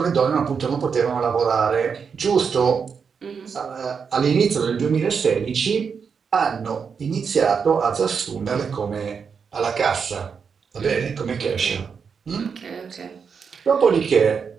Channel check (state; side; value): quieter; left; 6.1 dB